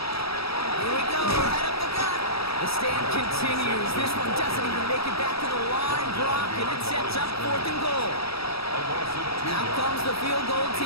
Here we go, right up the gut. The stand continues. This one doesn't even make it back to the line, Brock, and it sets up fourth and goal. Out comes the field goal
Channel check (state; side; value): late; right; 0.77 ms